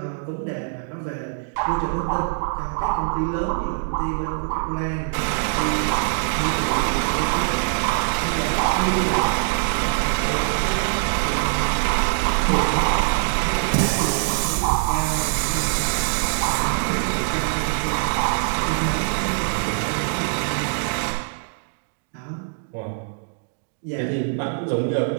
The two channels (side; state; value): left; silent; digital silence